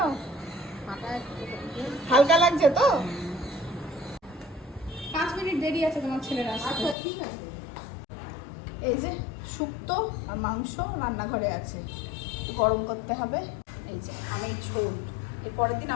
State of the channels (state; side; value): drops out; right; at 7.0 s